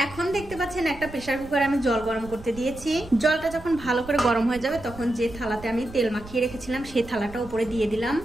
এখন দেখতে পাচ্ছেন একটা প্রেসার কুকারে আমি জল গরম করতে দিয়েছি। জলটা যখন ভালো করে গরম হয়ে যাবে তখন যে থালাতে আমি তেল মাখিয়ে রেখেছিলাম সেই থালাটা উপরে দিয়ে দিলাম।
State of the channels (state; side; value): noise; right; rumble, 16 dB below the sound